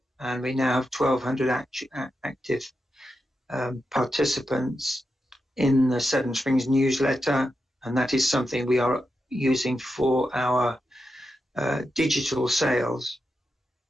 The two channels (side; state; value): both; normal; correlation 0.87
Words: and we now have 1,200 active participants in the Seven Springs newsletter, and that is something we are using for our digital sales.